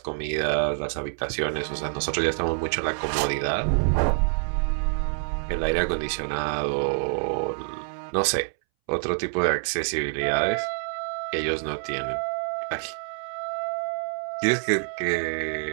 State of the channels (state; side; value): silent; left; 61 dB below the other